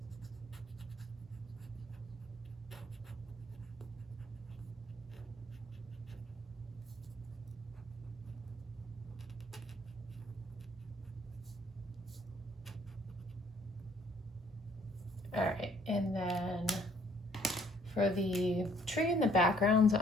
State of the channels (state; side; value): normal; both; correlation 0.62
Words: All right, and then for the tree in the background, so